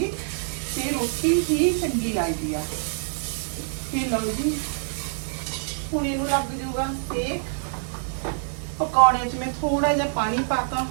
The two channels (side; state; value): left; silent; digital silence